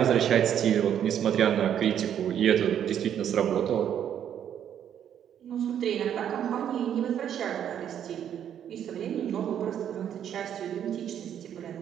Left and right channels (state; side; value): quieter; left; 9.5 dB